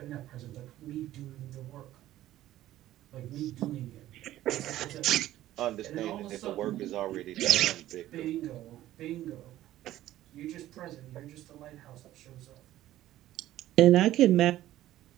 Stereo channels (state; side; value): quieter; left; 14.1 dB